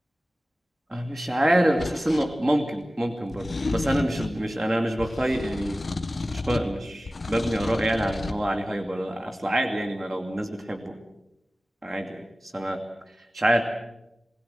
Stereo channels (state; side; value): normal; both; correlation 0.96